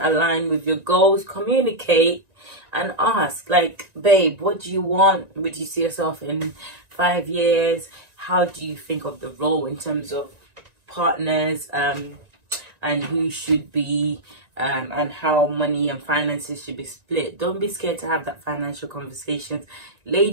with your goals, communicate and ask, like, babe, what do you want? Would you see yourself in 5 years? How do you think of the role in terms of partners? and who should be and how money and finances should be split. Don't be scared to have that financial conversations.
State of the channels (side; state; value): left; late; 1.9 ms